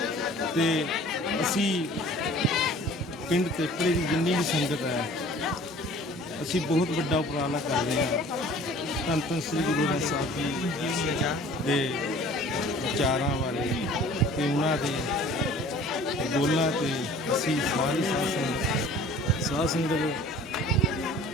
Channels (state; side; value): normal; both; correlation 0.48